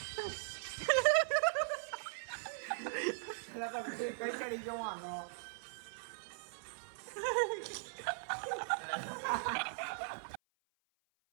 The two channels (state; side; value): silent; left; 51 dB below the other